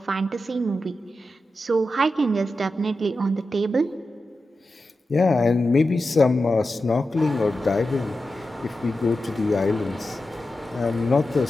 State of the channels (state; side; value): normal; both; correlation 0.91